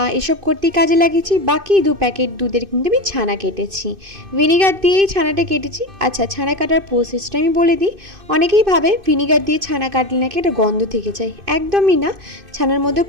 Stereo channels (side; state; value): left; late; 2.5 ms